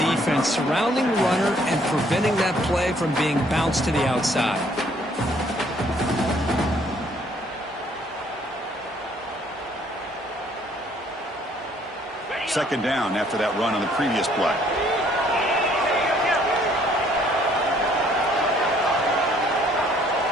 surrounding the runner and preventing that play from being bounced to the outside. Second down after that run on the previous play.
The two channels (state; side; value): normal; both; correlation 0.63